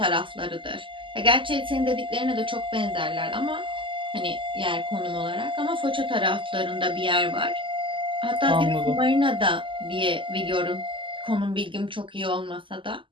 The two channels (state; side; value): late; left; 0.25 ms